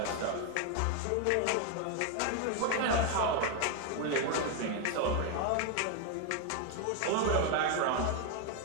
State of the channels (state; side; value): different; both; correlation 0.01